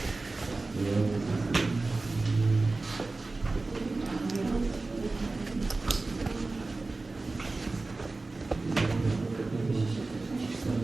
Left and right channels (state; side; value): quieter; left; 3.4 dB